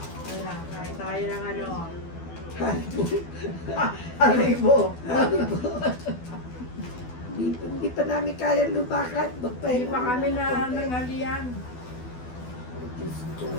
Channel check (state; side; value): late; right; 12 ms